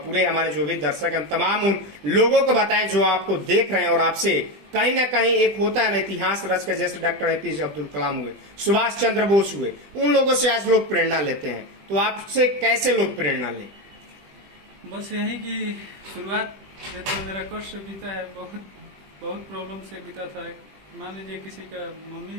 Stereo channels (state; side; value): late; left; 20 ms